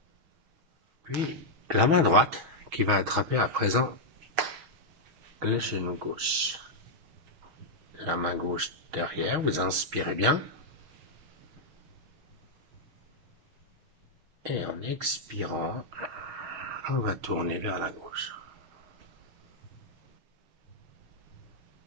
Puis la main droite qui va attraper à présent le genou gauche. La main gauche derrière, vous inspirez bien. Et en expirant, on va tourner vers la gauche.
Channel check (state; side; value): late; left; 6.3 ms